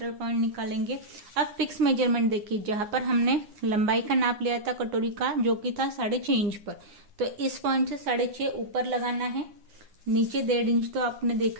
पॉइंट निकालेंगे। अब फिक्स मेजरमेंट देखिए, जहां पर हमने लंबाई का नाप लिया था कटोरी का जो कि था 6.5 इंच पर, तो इस पॉइंट से 6.5 ऊपर लगाना है। नीचे 1.5 इंच तो आपने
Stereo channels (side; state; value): left; late; 9.7 ms